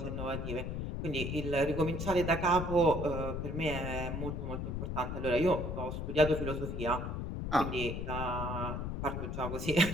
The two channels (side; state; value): left; noise; rumble, 3 dB below the sound